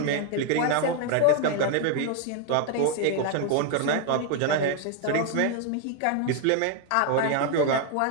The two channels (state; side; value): different; both; correlation 0.00